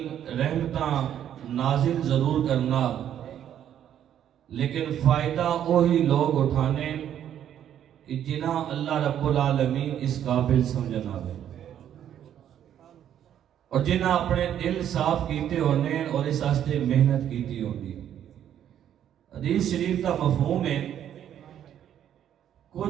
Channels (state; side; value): quieter; left; 10.2 dB